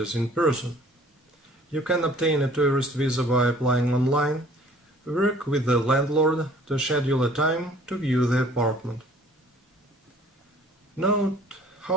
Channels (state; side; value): normal; both; correlation 0.53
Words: in person. You can obtain a tourist visa by applying online. Work with the landlord to schedule a time to view the apartment. Note